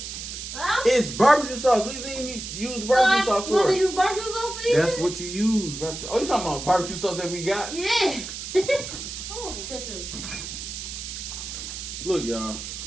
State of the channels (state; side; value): noise; right; hiss, 8 dB below the sound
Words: So? It's barbecue sauce. What do you think you use barbecue sauce You want for? to use barbecue sauce for you? That's what you use. Barbecue. Oh, you talking about barbecue sauce that we got? Yeah. I want some ketchup. Look, y'all.